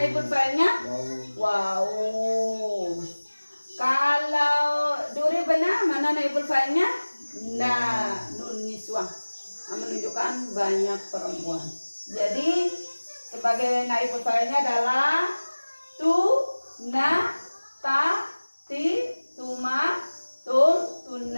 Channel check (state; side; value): inverted; both; correlation -1.00